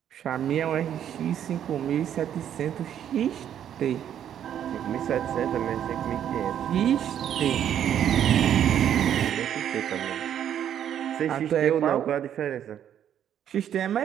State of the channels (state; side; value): quieter; left; 9.8 dB